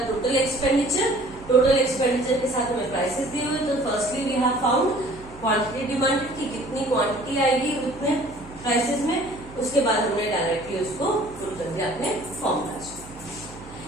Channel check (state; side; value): noise; right; hum, 19 dB below the sound